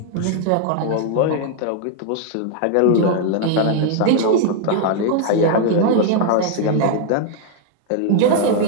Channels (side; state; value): both; different; correlation 0.00